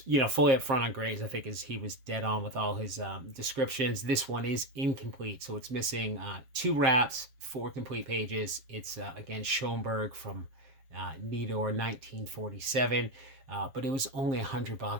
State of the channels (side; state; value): left; late; 7.3 ms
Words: fully up front on grades. I think he was dead on with all his descriptions. This one is incomplete, so it's missing 2 wraps, 4 complete pages. It's, again, Schoenberg from Nidor 1947. But it was only